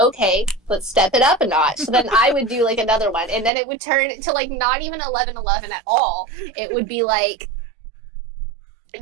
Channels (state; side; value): drops out; left; at 3.5 s